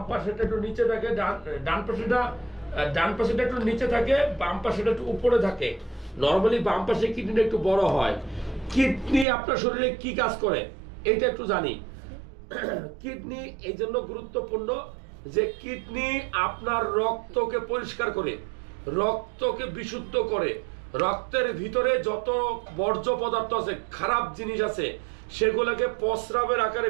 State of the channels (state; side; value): drops out; left; at 9.2 s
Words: পাশেটা একটু নিচে থাকে, ডান পাশেটা একটু নিচে থাকে, বাম পাশেটা একটু উপরে থাকে। নরমালি বাম পাশে কিডনিটা একটু বড় হয়। কিডনি আপনার শরীরে কি কাজ করে এটা একটু জানি। কিডনি এই জন্য গুরুত্বপূর্ণ যে কিডনি আপনার রক্তকে পরিষ্কার করে, রক্তকে বিশুদ্ধ করে। রক্তের ভিতরে যত বর্জ্য পদার্থ আছে, খারাপ জিনিস আছে, সেগুলোকে প্রস্রাবের আকারে